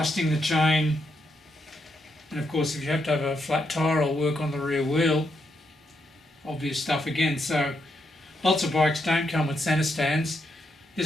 the chain. And of course, if you have to have a flat tyre or work on the rear wheel, obvious stuff again. So lots of bikes don't come with centre stands.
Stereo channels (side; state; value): both; normal; correlation 0.80